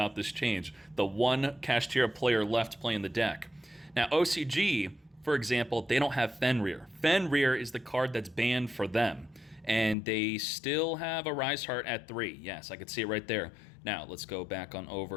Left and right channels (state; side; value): drops out; right; at 10.0 s